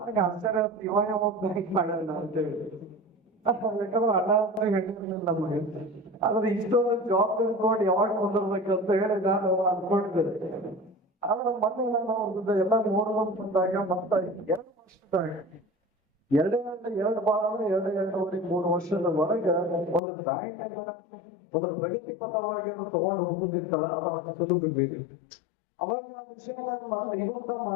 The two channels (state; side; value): drops out; right; at 20.0 s